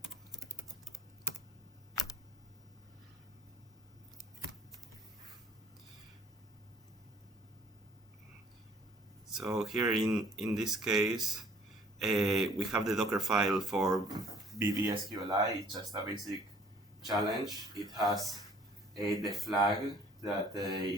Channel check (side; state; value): both; normal; correlation 0.57